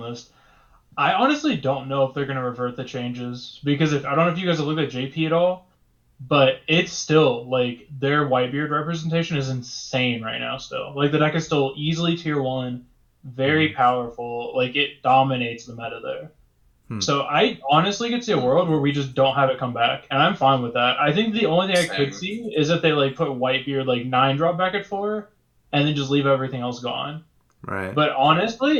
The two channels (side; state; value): both; identical; correlation 1.00